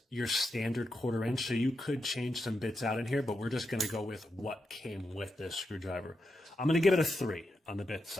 your standard 1/4 inch. So you could change some bits out in here, but we're just going to go with what came with this screwdriver. I'm going to give it a 3 on the bit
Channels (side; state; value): both; normal; correlation 0.86